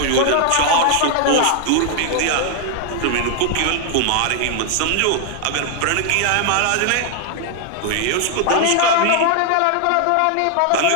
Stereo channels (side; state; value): both; different; correlation 0.00